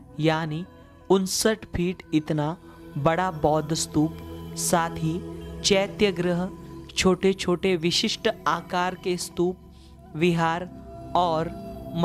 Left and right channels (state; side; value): identical; both; correlation 1.00